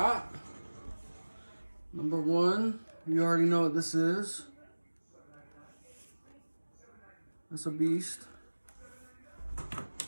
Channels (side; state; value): both; inverted; correlation -1.00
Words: Number one, you already know what this is. That's a beast.